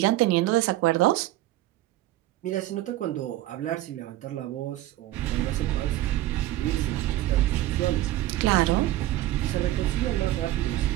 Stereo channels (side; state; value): left; quieter; 15.3 dB